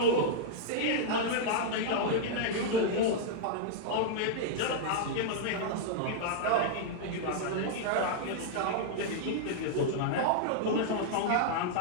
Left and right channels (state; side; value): different; both; correlation -0.01